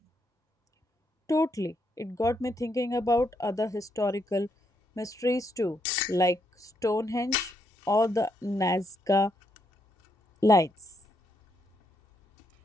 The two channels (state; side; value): normal; both; correlation 0.77